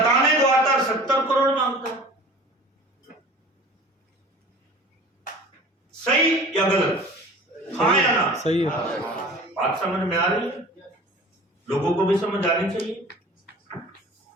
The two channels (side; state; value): both; normal; correlation 0.43